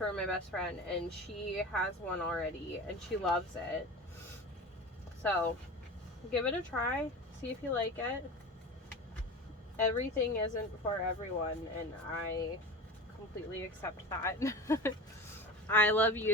my best friend, and she has one already and she loves it. So give it a try, see if you like it. Everything isn't for everyone, and I completely accept that. I love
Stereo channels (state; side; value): normal; both; correlation 0.32